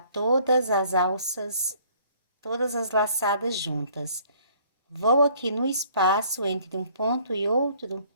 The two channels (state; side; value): inverted; both; correlation -0.59